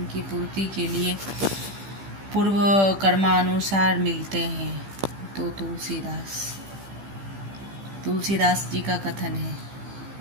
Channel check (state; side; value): late; left; 15 ms